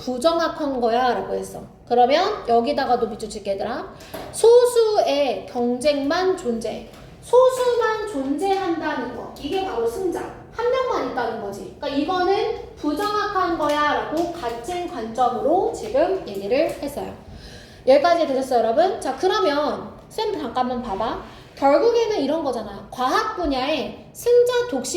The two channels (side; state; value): both; identical; correlation 1.00